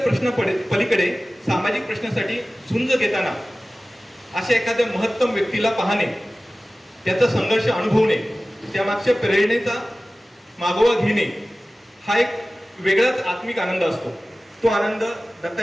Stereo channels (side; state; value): both; normal; correlation 0.97